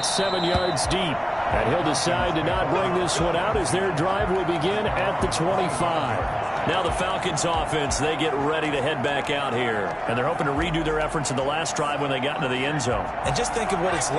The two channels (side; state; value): both; identical; correlation 1.00